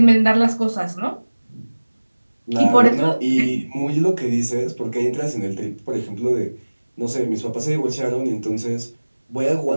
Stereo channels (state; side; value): inverted; both; correlation -1.00